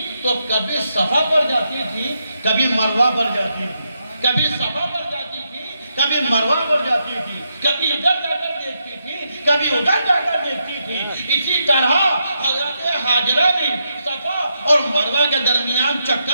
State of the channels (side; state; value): both; inverted; correlation -0.82